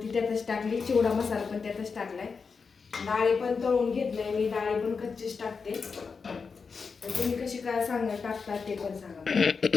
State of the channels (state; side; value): quieter; right; 5.2 dB